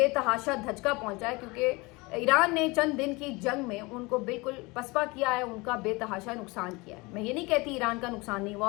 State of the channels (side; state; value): right; quieter; 24.8 dB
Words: धचका पहुंचा है, क्योंकि ईरान ने चंद दिन की जंग में उनको बिल्कुल पसपा किया है, उनका बेतहाशा नुकसान किया है। मैं ये नहीं कहती ईरान का नुकसान नहीं हुआ,